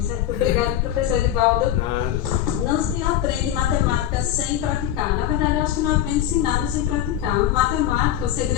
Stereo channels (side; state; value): right; quieter; 11.4 dB